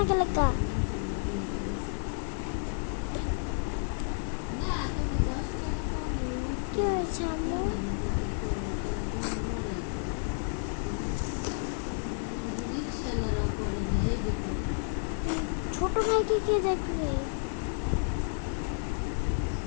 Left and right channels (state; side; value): silent; right; 57 dB below the other